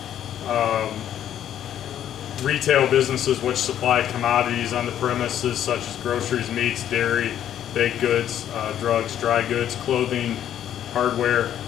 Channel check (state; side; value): quieter; right; 10.6 dB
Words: Retail businesses which supply commodities on the premises such as groceries, meats, dairy, baked goods, drugs, dry goods, clothing, hardware.